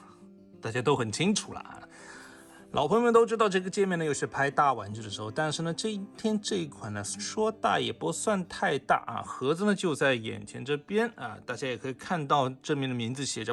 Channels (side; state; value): both; identical; correlation 1.00